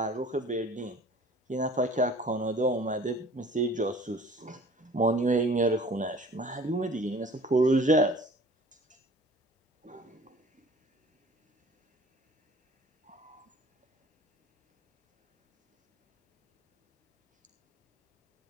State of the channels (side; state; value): both; normal; correlation 0.47